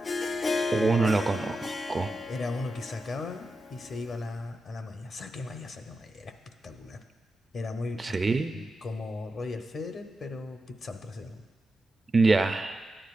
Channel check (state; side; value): normal; both; correlation 0.90